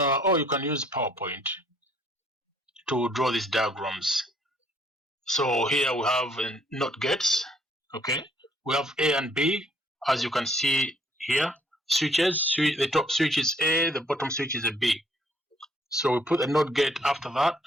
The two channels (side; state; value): both; normal; correlation 0.63